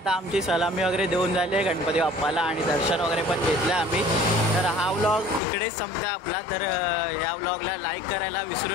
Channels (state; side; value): drops out; right; at 5.4 s